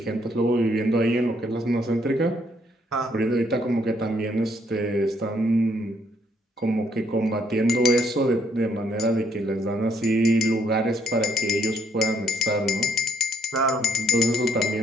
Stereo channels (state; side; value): normal; both; correlation 0.70